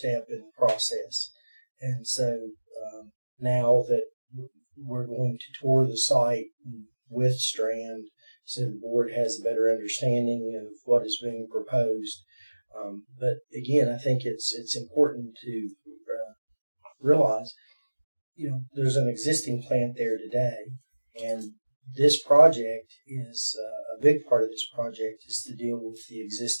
in the process, and so now that we're going to tour the site with Strand, so the board has a better understanding of what is being proposed. But again, I think it's important to realize, there's an existing plant there today, and this project is a big part of this project is to deal with the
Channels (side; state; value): both; inverted; correlation -1.00